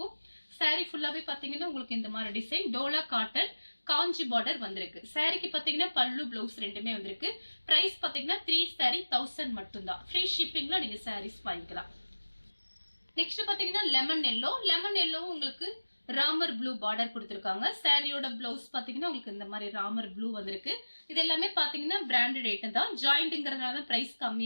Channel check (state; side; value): inverted; both; correlation -1.00